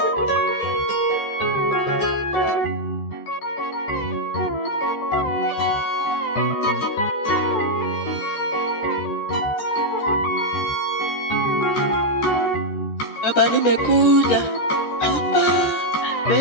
Baba, nimekuja hapa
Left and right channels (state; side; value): late; right; 14 ms